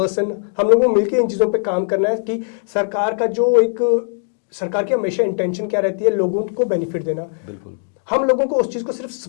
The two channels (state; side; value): silent; right; digital silence